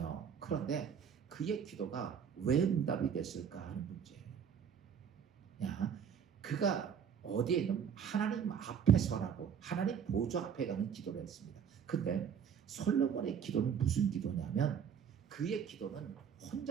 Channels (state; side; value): quieter; left; 7.7 dB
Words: 그런데 그의 기도가 왜 응답이 됐을까 하는 문제예요. 야, 그가 어디에 있는 하나님 앞에 서라고 하나님 보좌 앞에 가는 기도를 했습니다. 근데 솔로몬의 기도는 무슨 기도냐면 그의 기도는